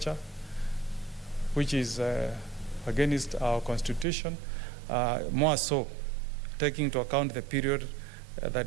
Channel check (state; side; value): drops out; left; at 4.0 s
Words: which is against our Constitution, more so taking into account the period that